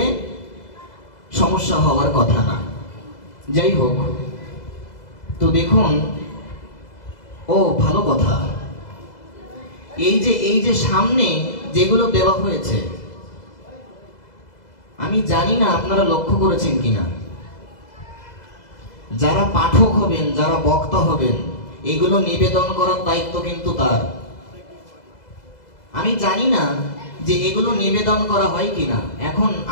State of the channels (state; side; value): late; right; 2.0 ms